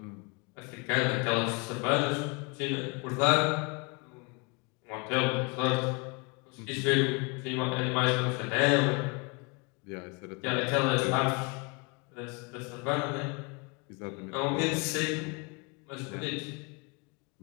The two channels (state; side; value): quieter; right; 30.3 dB